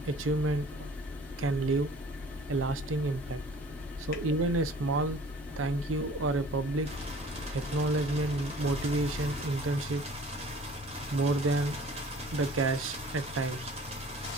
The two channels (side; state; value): both; normal; correlation 0.49